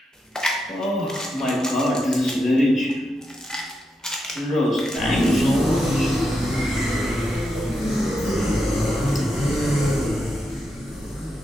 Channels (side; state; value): both; normal; correlation 0.85